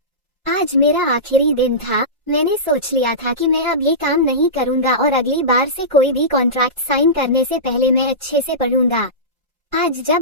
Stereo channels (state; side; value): normal; both; correlation -0.18